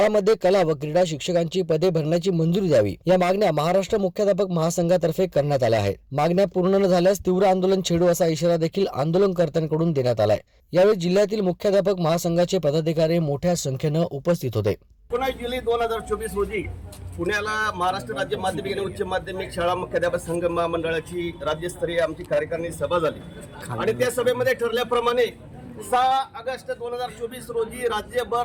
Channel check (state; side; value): identical; both; correlation 1.00